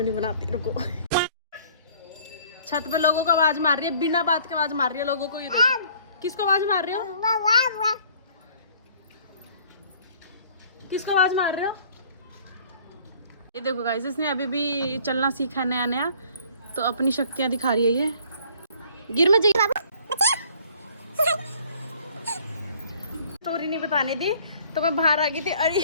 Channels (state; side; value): inverted; both; correlation -0.55